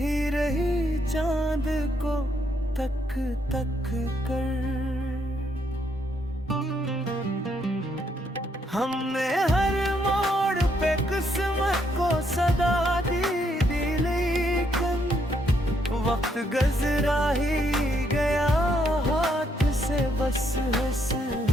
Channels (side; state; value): both; normal; correlation 0.74